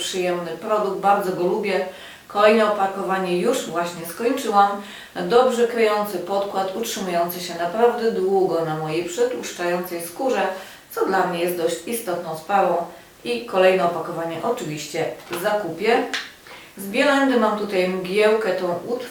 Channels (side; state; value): both; identical; correlation 1.00